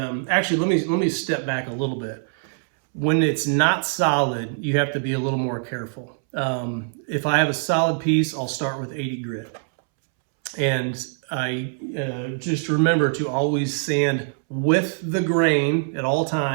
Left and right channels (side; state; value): left; silent; 63 dB below the other